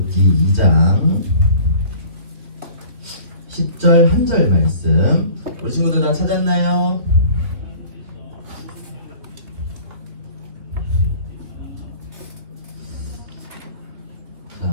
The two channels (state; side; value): late; left; 2.9 ms